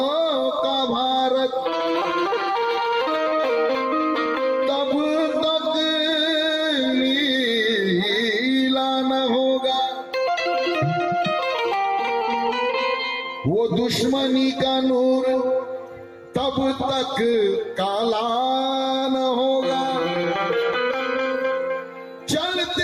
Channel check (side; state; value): both; identical; correlation 1.00